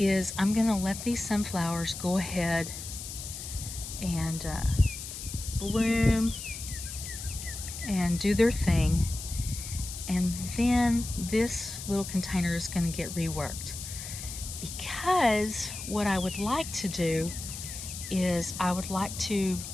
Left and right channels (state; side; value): noise; left; hiss, 9 dB below the sound